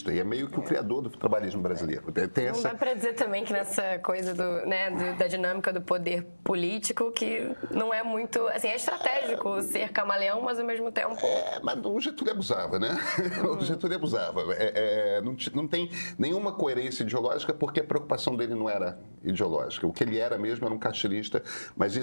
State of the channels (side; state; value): both; inverted; correlation -1.00